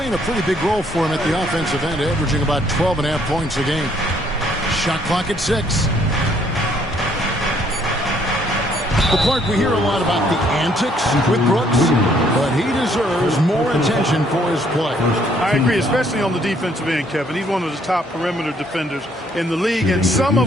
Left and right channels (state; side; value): normal; both; correlation 0.66